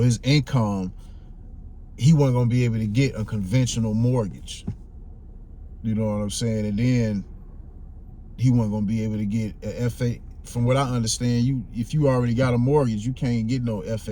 income, he wasn't gonna be able to get a conventional mortgage. You know what I'm saying? And then he wasn't gonna be able to get a FA. From what I understand, if you already got a mortgage, you can't get no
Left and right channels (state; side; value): identical; both; correlation 1.00